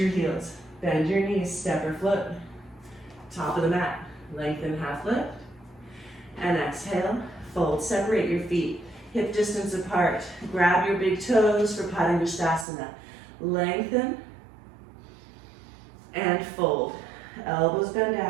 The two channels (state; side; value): drops out; left; at 12.7 s